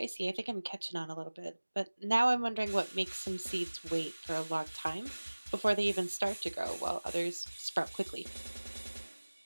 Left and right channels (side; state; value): both; inverted; correlation -1.00